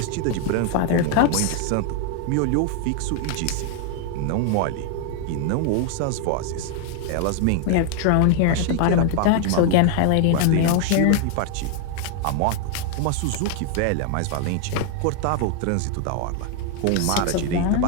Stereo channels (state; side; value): different; both; correlation 0.00